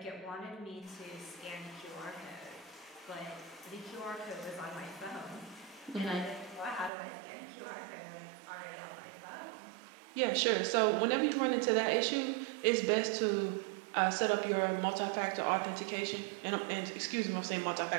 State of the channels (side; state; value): left; drops out; at 6.9 s